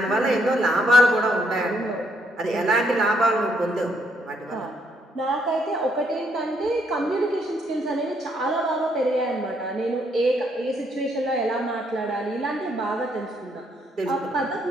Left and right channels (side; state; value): both; normal; correlation 0.72